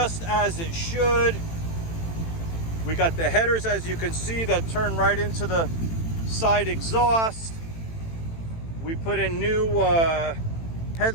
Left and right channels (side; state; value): right; late; 18 ms